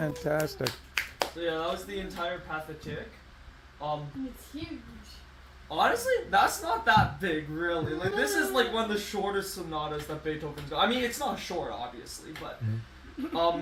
So yeah, that was the entire Pathetic. It's huge. Honestly, that's not that big, really. Like, this is like one of the shortest sonatas that Beethoven's got. I mean, it's not short, obviously, but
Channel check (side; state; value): both; identical; correlation 1.00